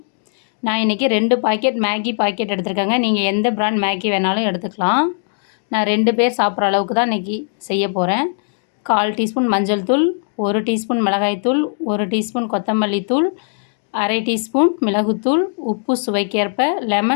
நான் இன்றைக்கி 2 பாக்கெட் மேகி பாக்கெட் எடுத்துருக்கேங்க. நீங்கள் எந்த பிராண்ட் மேகி வேணாலும் எடுத்துக்கலாம். நான் 2 பேர் சாப்பிட்ற அளவுக்கு தான் இன்றைக்கி செய்ய போகிறேன். 1/4 டீஸ்பூன் மஞ்சள் தூள், 1 டீஸ்பூன் மிளகாய்த்தூள், 1 டீஸ்பூன் கொத்தமல்லி தூள், அரை டீஸ்பூன் மிளகுத்தூள், உப்பு சுவைக்கேற்ப,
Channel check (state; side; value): silent; right; 67 dB below the other